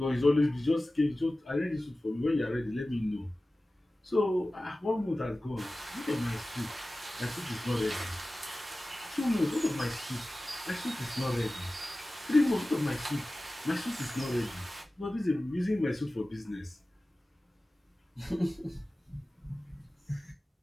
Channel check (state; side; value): normal; both; correlation 0.96